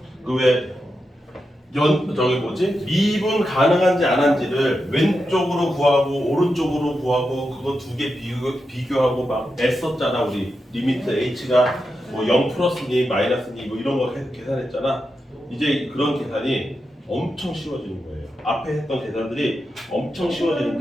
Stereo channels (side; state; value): both; normal; correlation 0.88